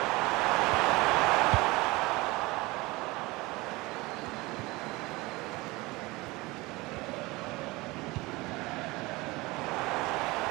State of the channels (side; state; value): left; quieter; 22.3 dB